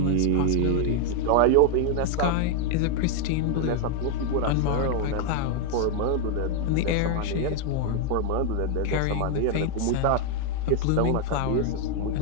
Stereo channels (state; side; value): different; both; correlation 0.00